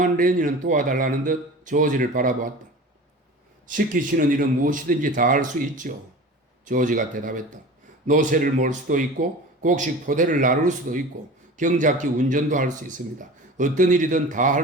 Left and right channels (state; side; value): normal; both; correlation 0.36